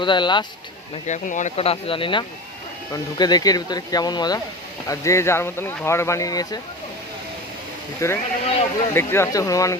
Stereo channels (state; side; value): normal; both; correlation 0.31